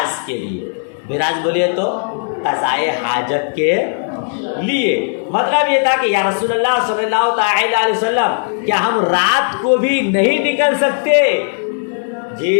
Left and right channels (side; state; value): right; silent; digital silence